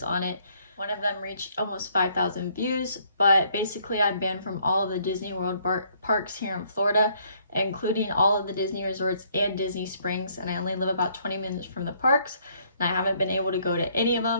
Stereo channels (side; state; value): both; inverted; correlation -0.66